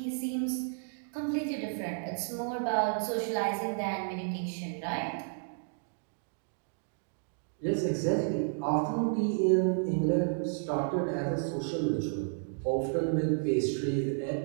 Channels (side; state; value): left; silent; digital silence